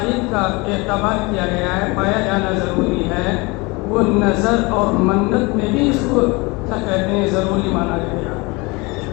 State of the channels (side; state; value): right; quieter; 25.7 dB